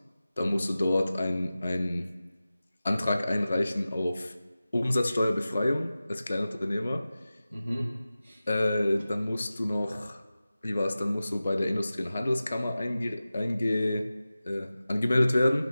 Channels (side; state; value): both; inverted; correlation -0.95